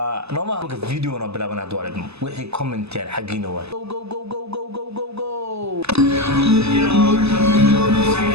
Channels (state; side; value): late; left; 0.79 ms